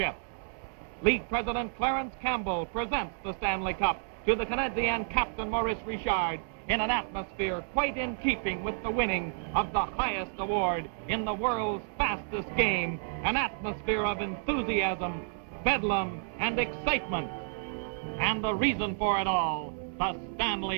League President Clarence Campbell presents the Stanley Cup to the Canadien captain Maurice Richard in an atmosphere quite in keeping with the winning of the highest award in the world's fastest game, an atmosphere of enthusiasm, bedlam, and excitement. And the reason for it all, the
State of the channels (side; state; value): left; silent; 57 dB below the other